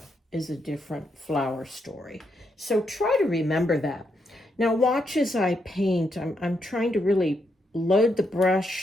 is a different flower story. So try to remember that. Now watch as I paint. I'm trying to really load the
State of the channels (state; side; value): normal; both; correlation 0.80